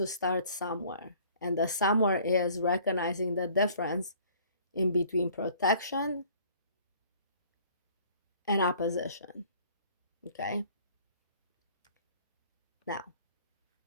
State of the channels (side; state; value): both; inverted; correlation -0.55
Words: start somewhere. And the somewhere is recognizing the difference in between protection and opposition. Okay. Now,